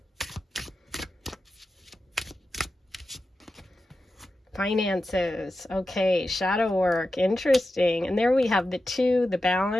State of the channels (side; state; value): both; normal; correlation 0.91